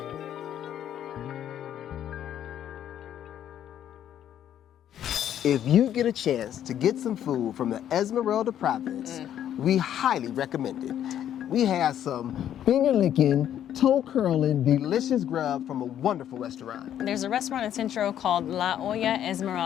If you get a chance to get some food from the Esmeralda province, we highly recommend it. We have some finger-licking, toe-curling, delicious grub from a wonderful restaurant. There's a restaurant in Centro called La Olla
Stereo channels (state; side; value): quieter; right; 10.5 dB